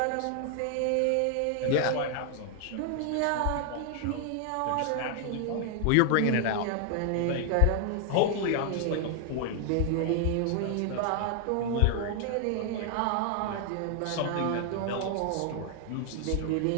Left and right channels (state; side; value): different; both; correlation 0.00